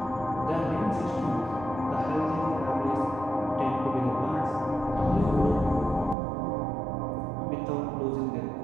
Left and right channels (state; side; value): drops out; left; at 6.2 s